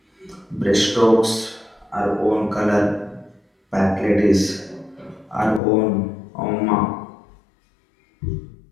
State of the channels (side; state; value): right; drops out; at 5.6 s